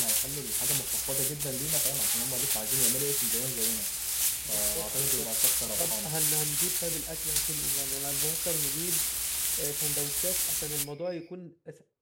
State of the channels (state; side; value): identical; both; correlation 1.00